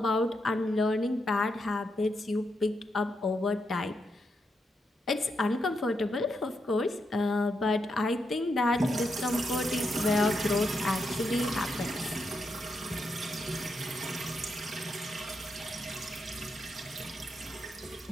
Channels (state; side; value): normal; both; correlation 0.82